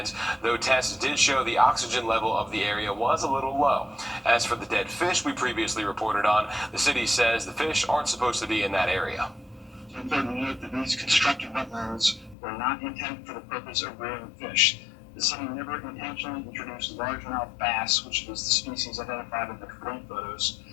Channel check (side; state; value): right; drops out; at 12.4 s